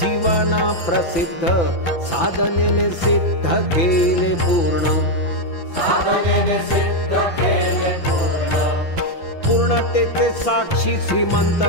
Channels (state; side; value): late; right; 5.9 ms